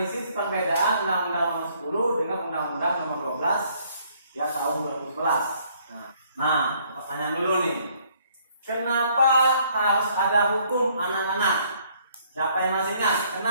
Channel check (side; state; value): both; inverted; correlation -0.64